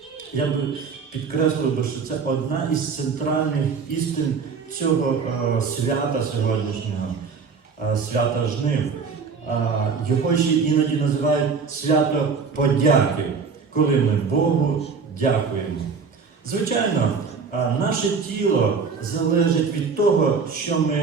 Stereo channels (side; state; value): left; quieter; 5.4 dB